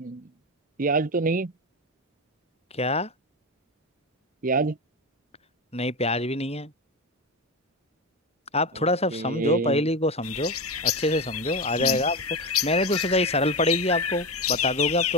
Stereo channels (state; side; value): normal; both; correlation 0.17